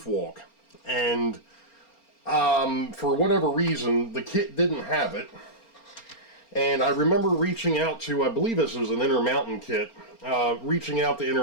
walk, and for whatever reason the kit didn't have it. And I remember reaching out to, I believe this was an Intermountain kit, reaching out to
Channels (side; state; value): right; late; 4.3 ms